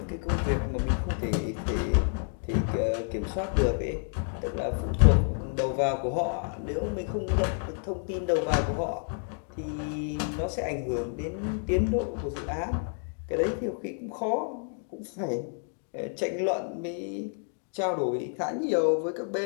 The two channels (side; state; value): right; silent; 58 dB below the other